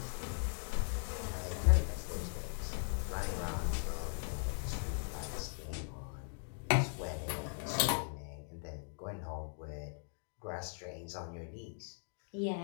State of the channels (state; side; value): silent; right; 52 dB below the other